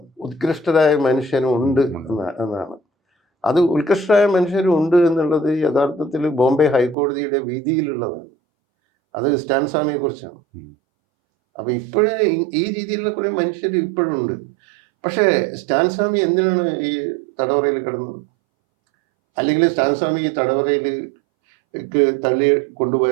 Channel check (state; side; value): drops out; left; at 7.0 s